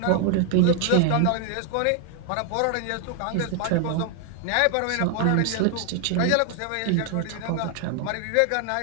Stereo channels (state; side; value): different; both; correlation 0.00